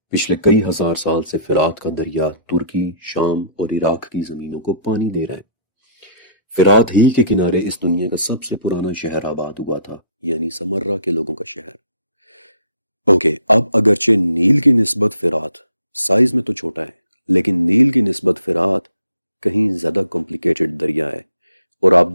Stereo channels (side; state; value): both; inverted; correlation -0.60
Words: پچھلے کئی ہزار سال سے فرات کا دریا ترکی، شام اور عراق کی زمینوں کو پانی دے رہا ہے۔ فرات ہی کے کنارے اس دنیا کا سب سے پرانا شہر آباد ہوا تھا، یعنی سمرہ کے لوگوں کا شہر۔ اب اگرچہ نیل کی نسبت فرات سائز میں تو چھوٹا ہے، لیکن نیل کی نسبت فرات کہیں زیادہ کمپلیکیٹڈ دریا ہے، اور آپ